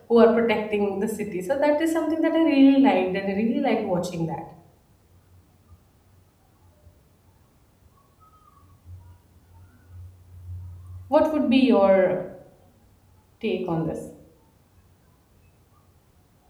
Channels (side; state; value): both; identical; correlation 1.00